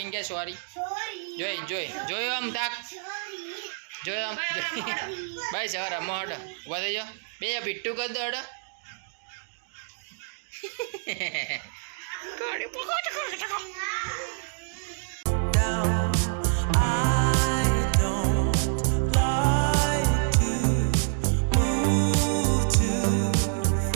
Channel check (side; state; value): left; silent; digital silence